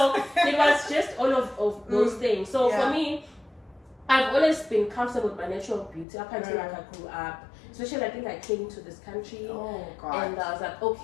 it was just all of those things. So for me, I've always been comfortable with my natural beauty up until like I grew up. Especially, I think I came to this country, and I was like,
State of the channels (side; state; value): right; drops out; at 6.1 s